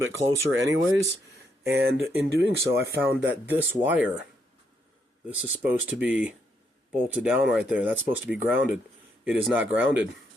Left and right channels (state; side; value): normal; both; correlation 0.76